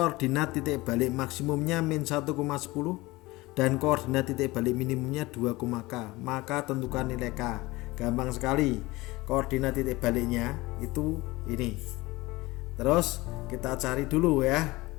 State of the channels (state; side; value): quieter; right; 20.8 dB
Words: titik balik maksimumnya min 1,10 dan koordinat titik balik minimumnya 2, K, maka tentukan nilai K. Gampang sekali, koordinat titik baliknya itu ini. Terus kita cari dulu ya,